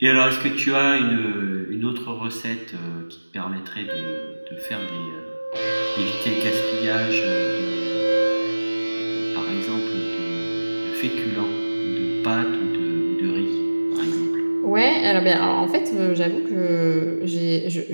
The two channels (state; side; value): inverted; both; correlation -1.00